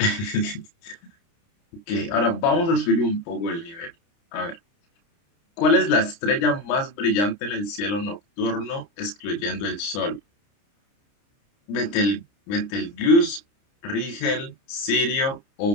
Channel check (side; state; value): right; late; 29 ms